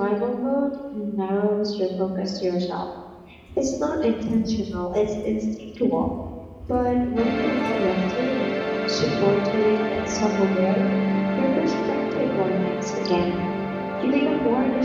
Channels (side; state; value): both; identical; correlation 1.00